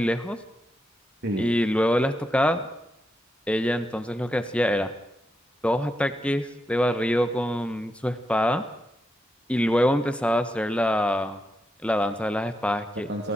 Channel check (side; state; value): both; normal; correlation 0.85